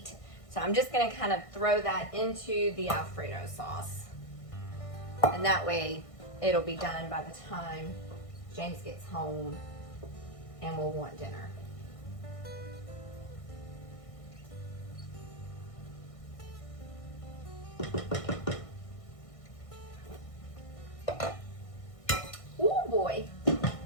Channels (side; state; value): right; late; 1.6 ms